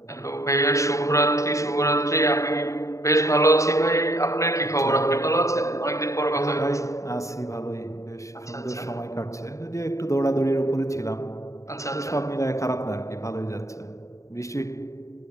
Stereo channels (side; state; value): right; late; 0.15 ms